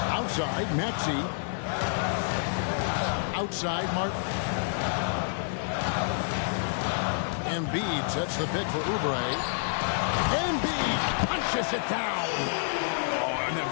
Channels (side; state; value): right; silent; digital silence